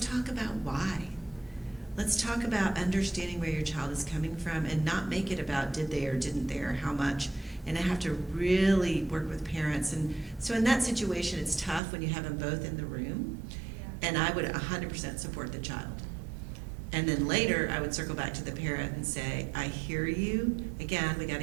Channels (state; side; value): drops out; left; at 11.8 s